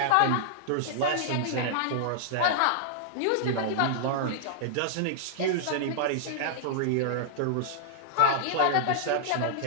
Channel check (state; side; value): different; both; correlation -0.01